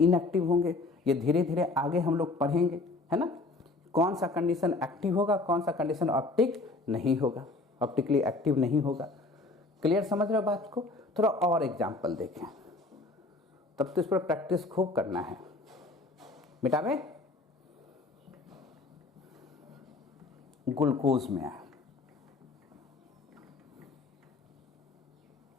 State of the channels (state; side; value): quieter; right; 3.3 dB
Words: होंगे। ये धीरे धीरे आगे हम लोग पढ़ेंगे, है ना, कौन सा कंडीशन एक्टिव होगा, कौन सा कंडीशन ऑप्टिक नहीं होगा, ऑप्टिकली एक्टिव नहीं होगा। क्लियर समझ रहे हो बात को? थोड़ा और एग्जांपल देखें, तब तो इस पर प्रैक्टिस खूब करना है। मिटावे, ग्लूकोज में है,